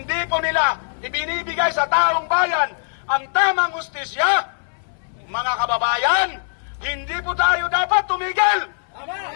po nila ibinibigay sa taong bayan ang tamang hustisya, mga kababayan, hindi po tayo dapat tumigil.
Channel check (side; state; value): right; silent; 61 dB below the other